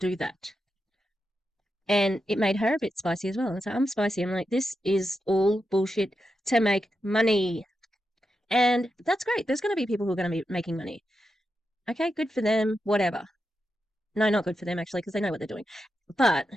that. And it made her a bit spicy as well. And so I'm spicy. I'm like, this is all bullshit to make money. And that's great. There's going to be people who are going to be making money. Okay, good for them, whatever. No, not good for them, actually, because they know what they're doing. But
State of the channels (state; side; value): normal; both; correlation 0.87